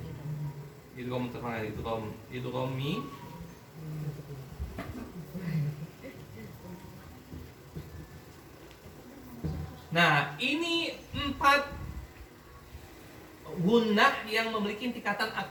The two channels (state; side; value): identical; both; correlation 1.00